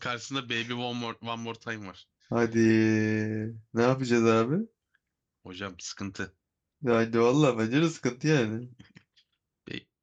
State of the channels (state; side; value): identical; both; correlation 1.00